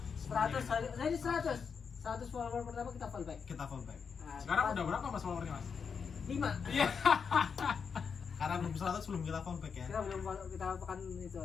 100 follower pertama kita follow back. Kita fallback. Nah, Sekarang udah berapa Mas followernya, Mas? 5. Iya. Karena belum 100 belum kita fallback ya. Kita belum follow, kita akan itu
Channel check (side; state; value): right; quieter; 6.1 dB